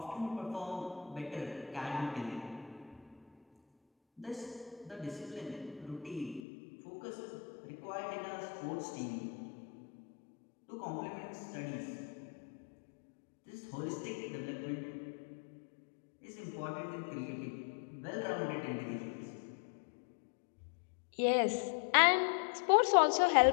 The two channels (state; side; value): drops out; right; at 6.4 s